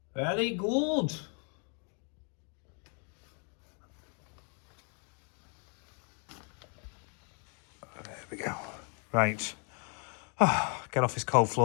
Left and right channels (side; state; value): right; quieter; 38.4 dB